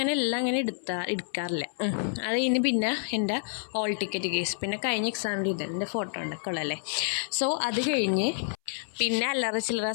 എല്ലാം അങ്ങനെ എടുക്കാറില്ല. അത് കഴിഞ്ഞ് പിന്നെ എൻ്റെ ഹോൾ ടിക്കറ്റ് കേസ്, പിന്നെ കഴിഞ്ഞ എക്സാമിൻ്റെ എൻ്റെ ഫോട്ടോ ഉണ്ടൊക്കെ ഉള്ളല്ലേ. സോ അത് കഴിഞ്ഞ് പിന്നെ അല്ലറ ചില്ലറ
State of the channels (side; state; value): right; silent; 59 dB below the other